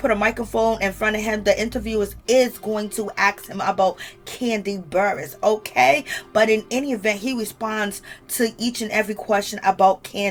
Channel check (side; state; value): both; identical; correlation 1.00